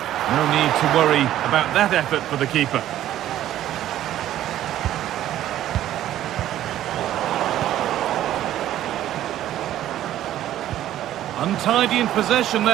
No need to worry about that effort for the keeper. Untidy in possession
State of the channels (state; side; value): quieter; left; 12.6 dB